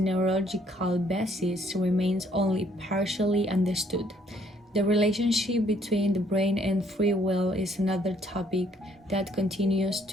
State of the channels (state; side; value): normal; both; correlation 0.65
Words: basis remains only partially understood. The relationship between the brain and free will is another topic that continues